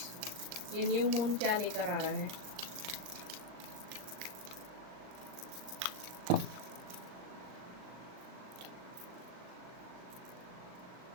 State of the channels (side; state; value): left; late; 39 ms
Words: ये न्यू मून क्या लेकर आ रहा है?